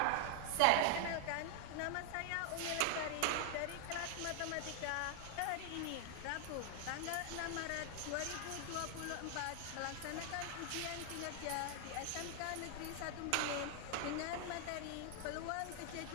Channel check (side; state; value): both; different; correlation 0.00